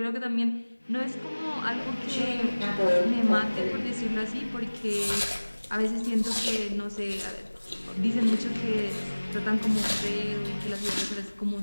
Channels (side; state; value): both; inverted; correlation -1.00